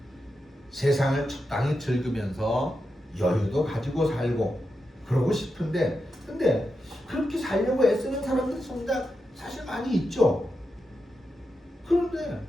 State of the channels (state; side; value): normal; both; correlation 0.88